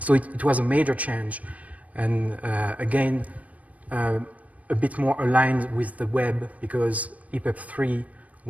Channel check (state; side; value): late; left; 0.069 ms